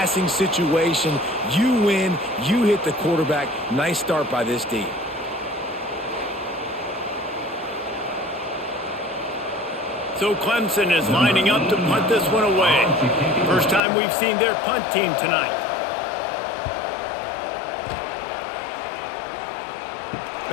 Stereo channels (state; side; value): drops out; right; at 13.8 s